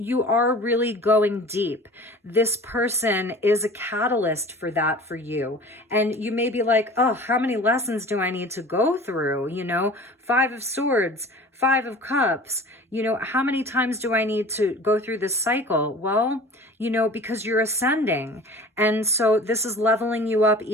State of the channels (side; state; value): both; normal; correlation 0.42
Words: are really going deep. This person is a catalyst for that for you. And you may be like, oh, how many lessons do I need to go through? Five of Swords, Five of Cups. How many times do I need to go through this cycle? Well, because you're ascending. And so this is leveling you up